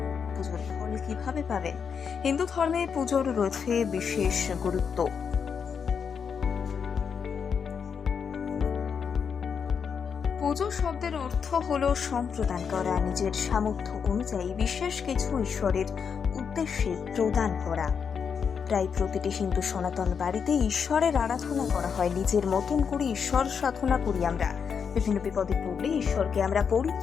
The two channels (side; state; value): right; quieter; 6.6 dB